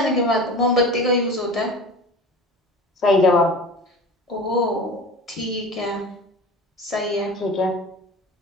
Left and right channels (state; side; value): normal; both; correlation 0.35